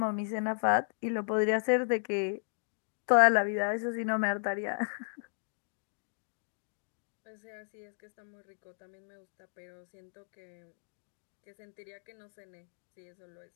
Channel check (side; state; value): right; silent; digital silence